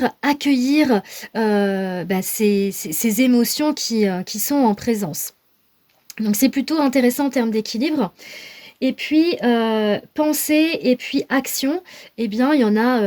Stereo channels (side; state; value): both; identical; correlation 1.00